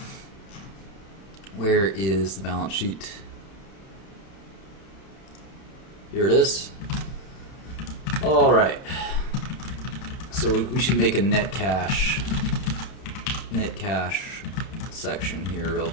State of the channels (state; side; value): late; right; 31 ms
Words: Where is the balance sheet? Here it is. Alright. So we should make a net cash section here real